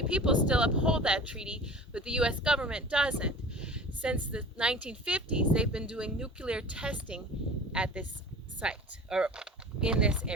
people still uphold that treaty, but the U.S. government doesn't. Since the 1950s, they've been doing nuclear testing at this site, or in this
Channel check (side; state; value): both; normal; correlation 0.39